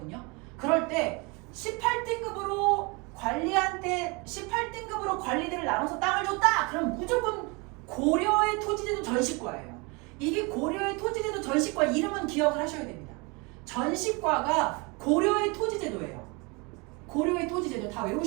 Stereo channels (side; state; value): left; quieter; 28.7 dB